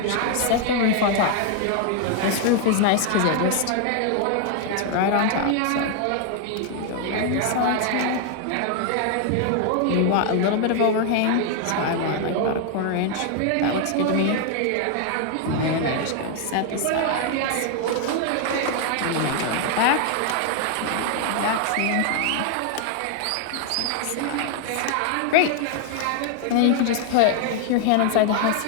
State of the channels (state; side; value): different; both; correlation 0.00